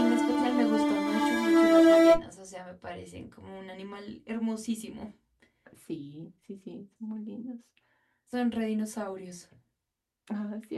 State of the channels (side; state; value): both; identical; correlation 1.00